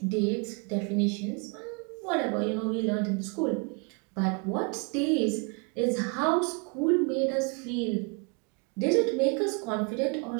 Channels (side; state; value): left; quieter; 34.4 dB